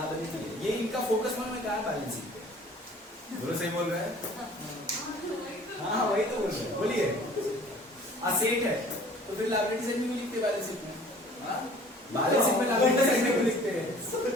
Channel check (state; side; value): normal; both; correlation 0.50